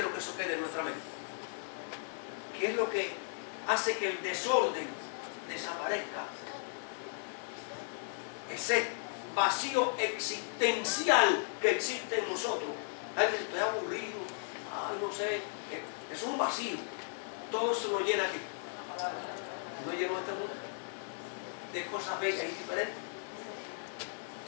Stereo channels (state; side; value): silent; right; 54 dB below the other